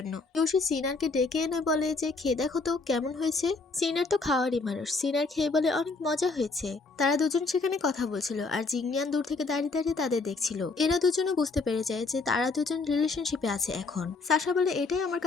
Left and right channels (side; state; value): right; quieter; 3.8 dB